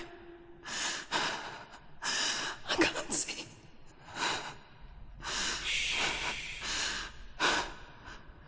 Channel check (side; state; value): both; identical; correlation 1.00